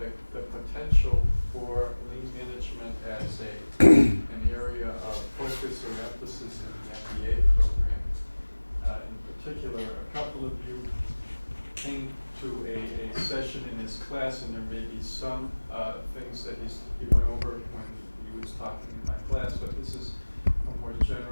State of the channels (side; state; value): both; inverted; correlation -1.00